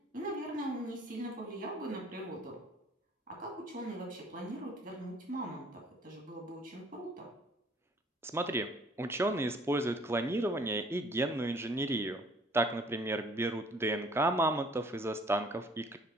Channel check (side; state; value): both; normal; correlation 0.56